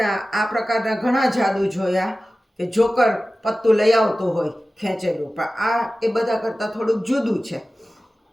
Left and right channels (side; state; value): both; normal; correlation 0.96